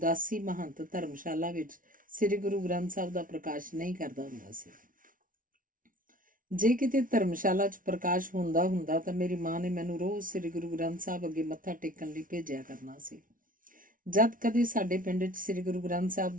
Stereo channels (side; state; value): left; late; 0.39 ms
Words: ਮਹੰਤ ਧਰਮਸ਼ਾਲਾ ਵਿੱਚ ਸ੍ਰੀ ਗੁਰੂ ਗ੍ਰੰਥ ਸਾਹਿਬ ਦਾ ਪ੍ਰਕਾਸ਼ ਨਹੀਂ ਕਰਦਾ ਹੁੰਦਾ ਸੀ। ਜੇ ਕਿਤੇ ਧਰਮਸ਼ਾਲਾ 'ਚ ਪ੍ਰਕਾਸ਼ ਹੁੰਦਾ ਤਾਂ ਮੇਰੀ ਮਾਂ ਨੇ ਮੈਨੂੰ ਰੋਜ਼ ਸ੍ਰੀ ਗੁਰੂ ਗ੍ਰੰਥ ਸਾਹਿਬ ਅੱਗੇ ਮੱਥਾ ਟੇਕਣ ਲਈ ਭੇਜਿਆ ਕਰਨਾ ਸੀ। ਜਦ ਕਦੇ ਸਾਡੇ ਪਿੰਡ 'ਚ ਸ੍ਰੀ ਗੁਰੂ ਗ੍ਰੰਥ ਸਾਹਿਬ